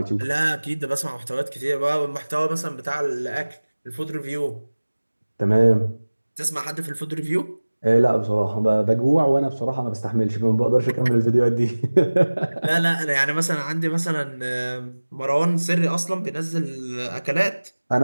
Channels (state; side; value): inverted; both; correlation -1.00